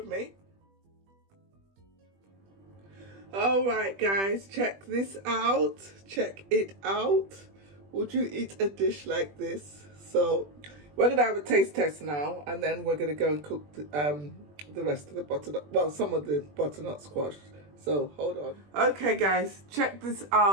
me. Alright guys, check this out. Check it out. Would you eat a dish like this? So we're going to have a taste test now and then we're going to go and cook the rest of the butternut, well, some of the butternut squash. So hold on. Okay guys, check this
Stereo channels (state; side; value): late; left; 20 ms